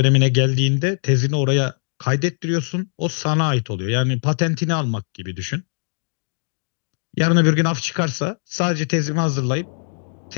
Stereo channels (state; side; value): silent; right; digital silence